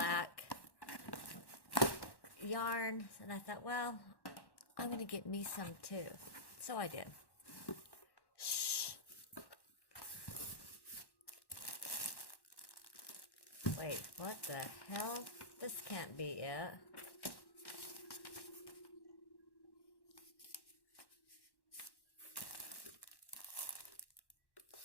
yarn, and I thought, well, I'm gonna get me some too. So I did. Shh. Wait, what the hell? This can't be it.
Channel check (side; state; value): right; late; 1.1 ms